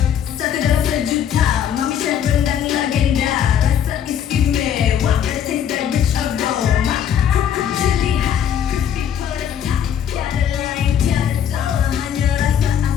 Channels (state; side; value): quieter; right; 8.9 dB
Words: satu dalam sejuta, MAMEE Chef rendang legenda. Rasa istimewa, the taste that rich aroma. Kerupuk jeli hot, crispy pedas top. Tiada lain, tiada salah, hanya rasa